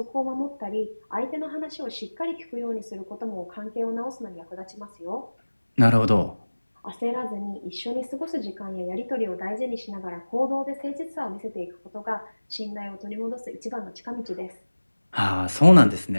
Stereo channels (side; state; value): both; inverted; correlation -1.00